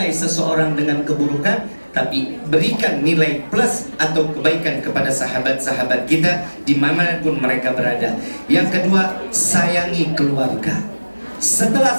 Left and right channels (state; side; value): inverted; both; correlation -1.00